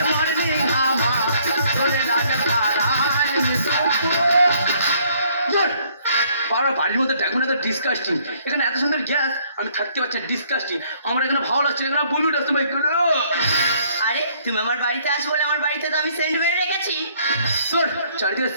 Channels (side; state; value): both; inverted; correlation -0.64